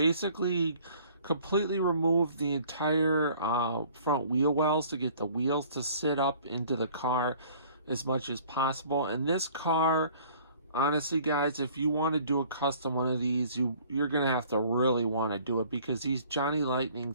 completely remove the entire front wheel wells to get the wheels to sit up into the car as much as possible. And this car, honestly guys, if you want to do a custom one of these, you're gonna have to really want to do it because these Johnny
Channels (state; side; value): inverted; both; correlation -0.54